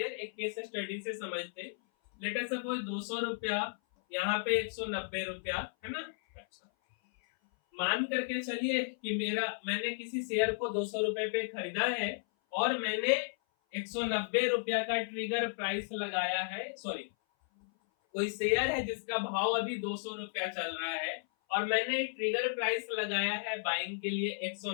एक केस स्टडी से समझते। लेट अस सपोज 200 रुपया, यहाँ पे 190 रुपया, है ना। अच्छा, मान करके चलिए कि मैंने किसी शेयर को 200 रुपए पे खरीदा है और मैंने 190 रुपया का ट्रिगर प्राइस लगाया है। सॉरी, कोई शेयर है जिसका भाव अभी 200 रुपया चल रहा है और मैंने ट्रिगर प्राइस लगाया है बाइंग के लिए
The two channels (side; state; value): right; silent; 55 dB below the other